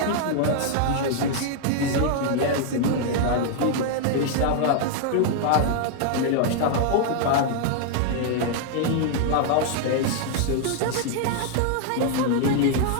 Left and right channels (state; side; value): different; both; correlation -0.01